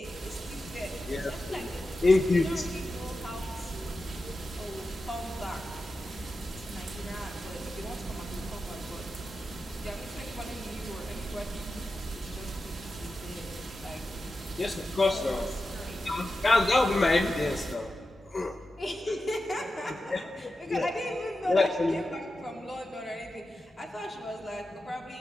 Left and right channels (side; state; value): both; normal; correlation 0.91